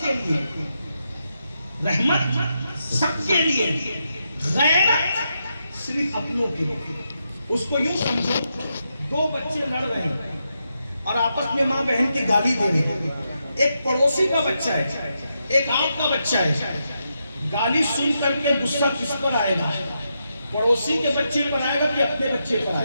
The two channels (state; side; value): inverted; both; correlation -0.84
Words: کے لیے, رحمت سب کے لیے, غیرت صرف اپنوں کے لیے. اس کو یوں سمجھو, دو بچے لڑ رہے ہیں اور آپس میں ماں بہن کی گالی دے رہے ہیں. ایک پڑوسی کا بچہ ہے, ایک آپ کا بچہ ہے. گالی سن کر کے غصہ کس پر آئے گا؟ پڑوسی کے بچے پر آئے گا کہ اپنے بچے پر